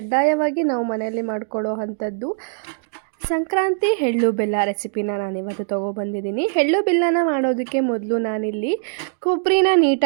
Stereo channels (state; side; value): silent; left; digital silence